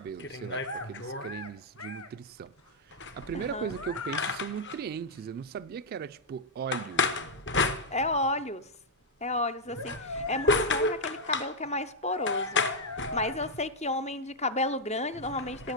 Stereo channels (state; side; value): normal; both; correlation -0.03